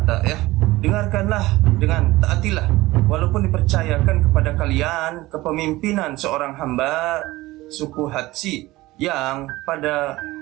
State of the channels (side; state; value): left; quieter; 18.8 dB